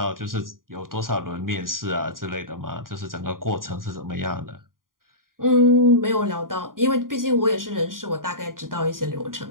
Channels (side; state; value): left; late; 0.91 ms